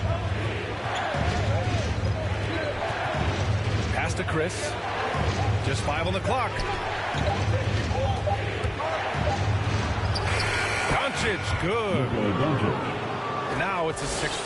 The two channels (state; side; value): identical; both; correlation 1.00